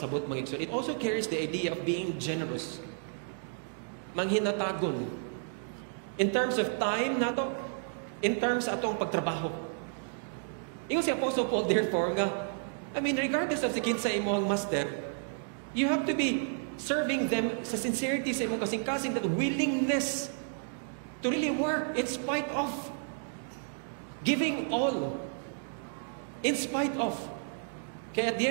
mga igsoon. It also carries the idea of being generous. Manghinatagon. In terms of time nato, in terms atong pagtrabaho. Ingon si Apostle Paul, therefore, nga, I mean, regardless of si kinsa imong master, you have to be serving them sa sincerity sa imong kasing-kasing, that willingness to really work in spite of, giving all, in spite of. Kaya at the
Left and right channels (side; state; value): left; silent; digital silence